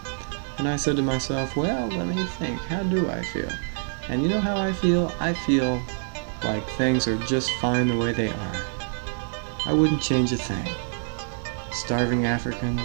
And I said to myself, well, let me think. How do I feel? And you know how I feel? I feel like things are just fine the way they are. I wouldn't change a thing. Starving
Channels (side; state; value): left; silent; 59 dB below the other